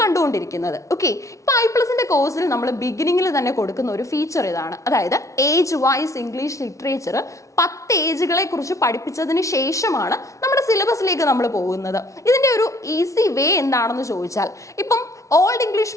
ഓക്കെ, ഇപ്പൊ I+ന്റെ കോഴ്സിൽ നമ്മൾ ബിഗിനിങ്ങിൽ തന്നെ കൊടുക്കുന്ന ഒരു ഫീച്ചർ ഇതാണ്. അതായത് ഏജ് വൈസ് ഇംഗ്ലീഷ് ലിറ്ററേച്ചർ 10 ഏജുകളെ കുറിച്ച് പഠിപ്പിച്ചതിന് ശേഷമാണ് നമ്മുടെ സിലബസിലേക്ക് നമ്മൾ പോകുന്നത്. ഇതിന്റെ ഒരു ഈസി വേ എന്താണെന്ന് ചോദിച്ചാൽ, ഇപ്പം ഓൾഡ് ഇംഗ്ലീഷ്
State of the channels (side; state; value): right; late; 0.15 ms